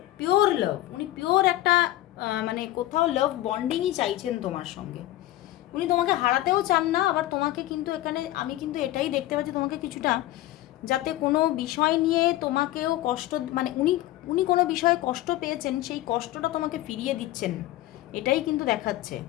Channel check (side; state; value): right; quieter; 15.5 dB